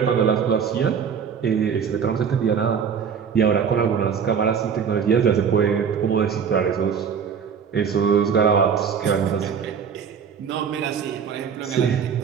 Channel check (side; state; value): left; quieter; 7.0 dB